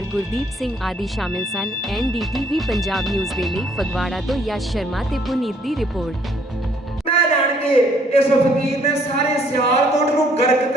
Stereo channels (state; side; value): normal; both; correlation 0.64